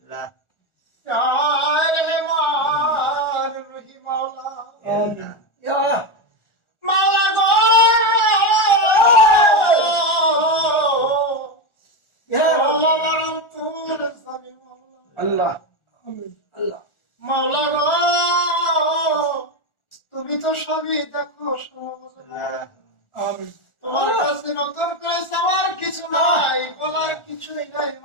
ইয়া রহমান রহিম মাওলা ইয়া মাওলা গো ইয়া মাওলা মরতুর সামি মাওলা আল্লাহ আমিন আল্লাহ মাওলা গো তুমি তো সবই দেখো আমিন তোমার কাছে নতুন করে চাওয়ার কিছু নাই বলার কিছুই নাই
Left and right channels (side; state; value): right; late; 1.4 ms